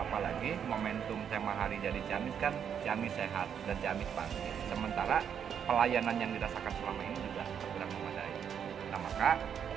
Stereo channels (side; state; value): left; quieter; 8.1 dB